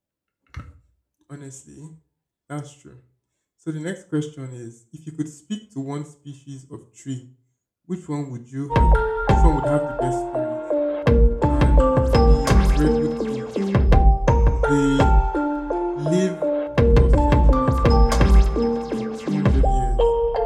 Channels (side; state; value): both; identical; correlation 1.00